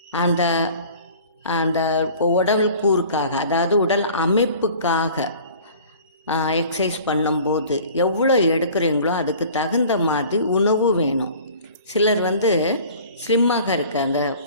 அந்த அந்த உடல் கூறுக்காக, அதாவது உடல் அமைப்புக்காக எக்ஸசைஸ் பண்ணும்போது எவ்வளோ எடுக்கிறீங்களோ அதுக்கு தகுந்த மாதிரி உணவு வேணும். சிலர் வந்து ஸ்லிம்மாக இருக்க அந்த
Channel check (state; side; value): inverted; both; correlation -0.46